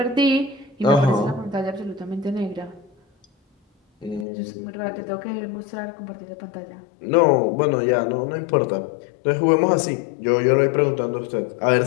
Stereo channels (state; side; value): drops out; right; at 4.2 s